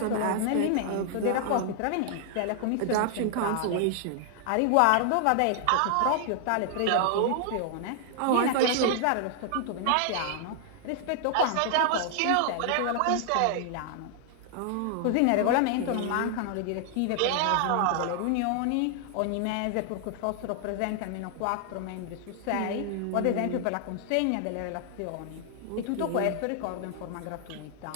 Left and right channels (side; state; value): both; different; correlation 0.00